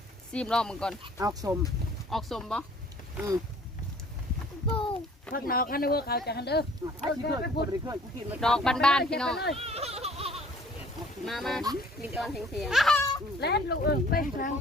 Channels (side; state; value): both; normal; correlation 0.55